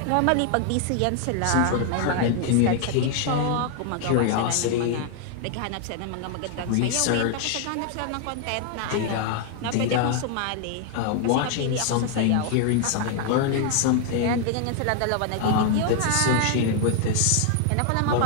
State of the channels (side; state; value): both; different; correlation 0.00